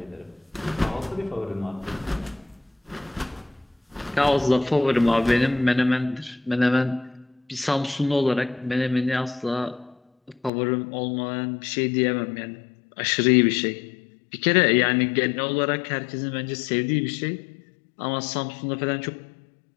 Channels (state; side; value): drops out; right; at 10.5 s